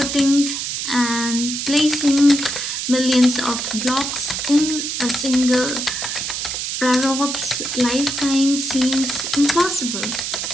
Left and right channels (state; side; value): noise; right; hiss, 3 dB below the sound